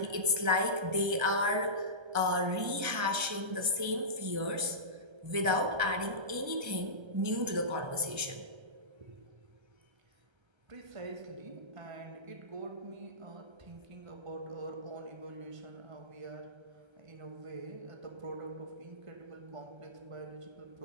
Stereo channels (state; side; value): late; left; 1.3 ms